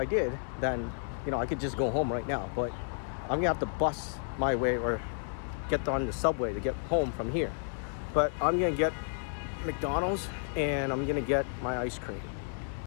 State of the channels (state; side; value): silent; right; digital silence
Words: did, then I could just go home right now. But I'm gonna have to bus my way or get on the subway to get home from here. But I'm gonna get McDonald's and I'm gonna get my ice cream.